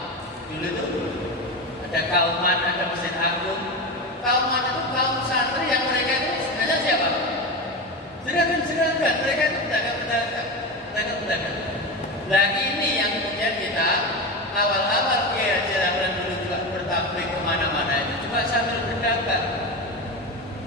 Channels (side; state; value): both; normal; correlation 0.21